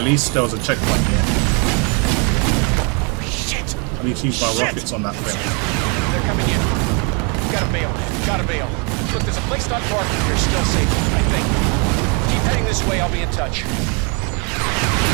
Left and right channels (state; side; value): quieter; left; 34.6 dB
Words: least there was a checkpoint here. Shit! I need to use my rockets on that thing. They're coming in. Gotta bail, gotta bail. Look, there's a place not far from here still safe, I think. Keep heading this way, I'll be in touch.